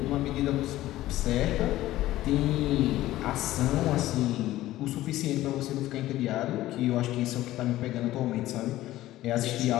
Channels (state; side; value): quieter; right; 15.4 dB